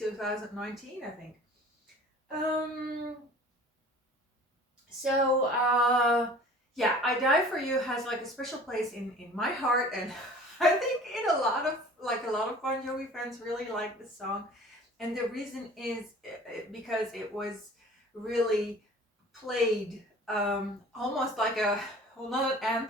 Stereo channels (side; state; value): both; normal; correlation 0.46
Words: I think. Yeah, I Die For You has like a special place in my heart, and I think in a lot of Bon Jovi fans really like this song. And the reason is because it was really played almost like not an